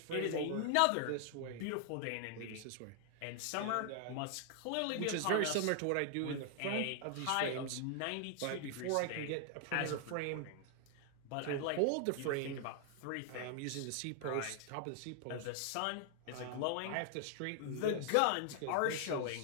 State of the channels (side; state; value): both; different; correlation 0.00